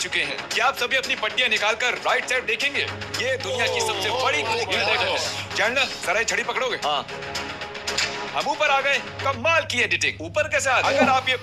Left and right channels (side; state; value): both; identical; correlation 1.00